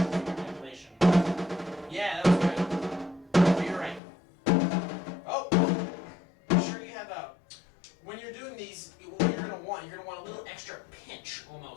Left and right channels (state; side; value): drops out; right; at 4.0 s